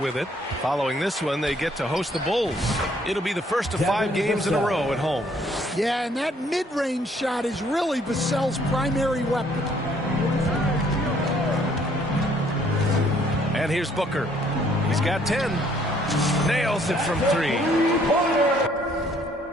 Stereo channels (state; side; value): normal; both; correlation 0.64